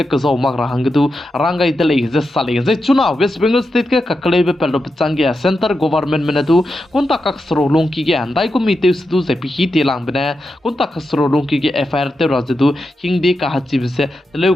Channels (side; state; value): both; normal; correlation 0.88